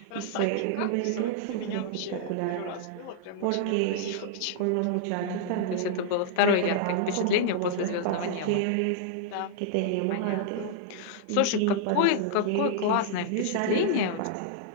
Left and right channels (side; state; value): both; different; correlation -0.01